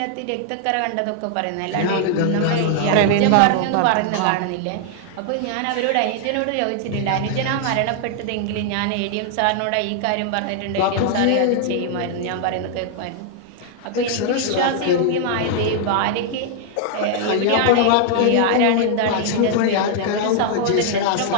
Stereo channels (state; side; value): different; both; correlation 0.00